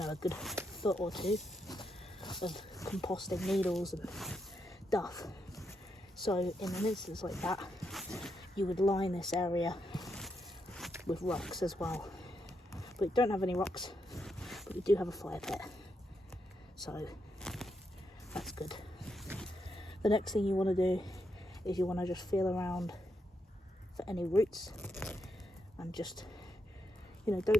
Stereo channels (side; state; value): both; normal; correlation 0.82